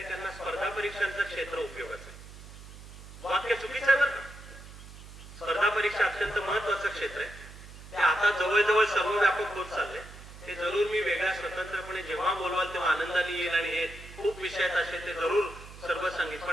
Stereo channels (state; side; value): noise; right; hum, 16 dB below the sound